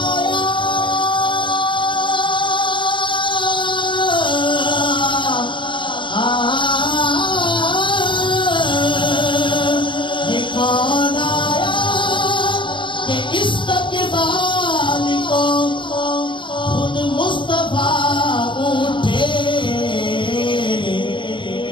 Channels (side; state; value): right; late; 0.24 ms